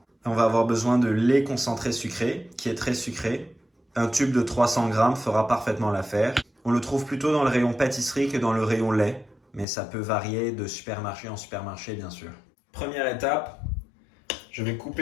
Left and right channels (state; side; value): drops out; right; at 9.7 s